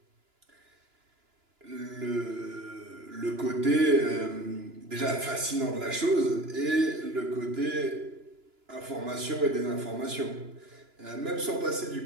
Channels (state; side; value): late; left; 2.9 ms